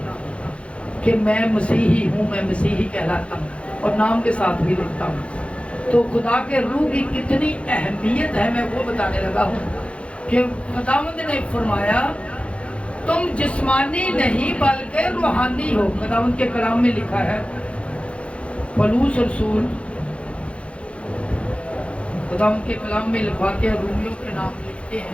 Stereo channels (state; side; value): late; right; 0.061 ms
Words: کہ میں مسیحی ہوں، میں مسیحی کہلاتا ہوں، اور نام کے ساتھ بھی لکھتا ہوں. تو خدا کے روح کی کتنی اہمیت ہے میں وہ بتانے لگا ہوں کہ خداوند نے فرمایا تم جسمانی نہیں بلکہ روحانی ہو. خداوند کے کلام میں لکھا ہے، پولس رسول خداوند کے کلام میں لکھواتے ہیں، رومیوں کے نام لکھتے